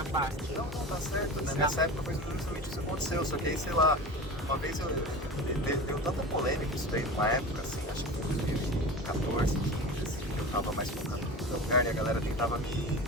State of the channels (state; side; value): normal; both; correlation 0.31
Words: parte? Não, tá certo, né? Nessa época foi justamente isso que aconteceu, só que aí, sei lá, uma vez deu tanta polêmica isso daí numa época, assim, acho que foi 2014, 15, assim, que eu tava mais focado no lugar e a galera tentava me